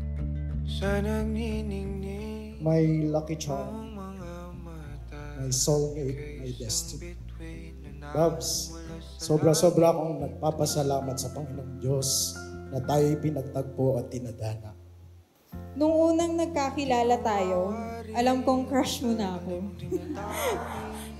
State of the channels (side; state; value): both; identical; correlation 1.00